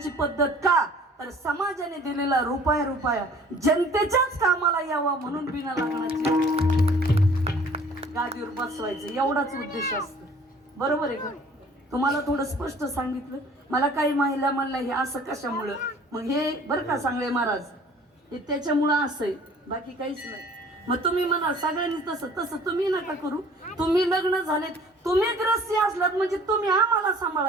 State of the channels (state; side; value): normal; both; correlation 0.52